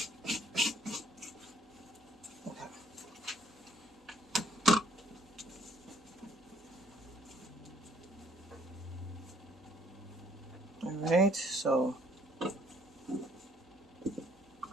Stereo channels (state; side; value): normal; both; correlation 0.63